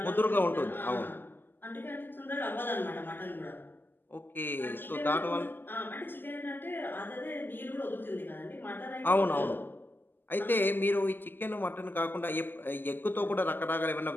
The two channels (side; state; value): right; late; 0.093 ms